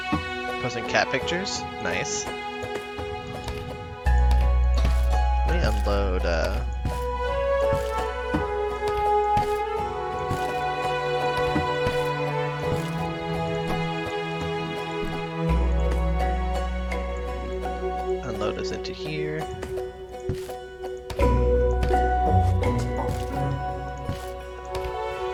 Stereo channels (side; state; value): both; identical; correlation 1.00